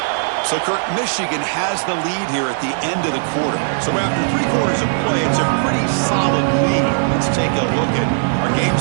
So, Kirk, Michigan has the lead here at the end of the quarter. So after 3 quarters of play, it's a pretty solid lead. Let's take a look at our game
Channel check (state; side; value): silent; left; digital silence